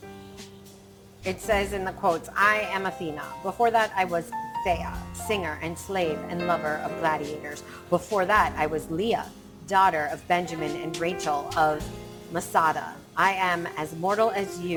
It says in the quotes, I am Athena. Before that, I was Thea, singer and slave and lover of gladiators. Before that, I was Leah, daughter of Benjamin and Rachel of Masada. I am as mortal as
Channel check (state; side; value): identical; both; correlation 1.00